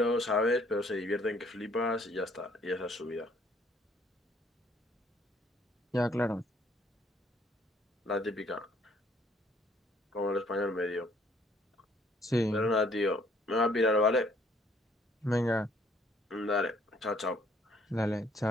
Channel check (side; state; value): both; normal; correlation 0.63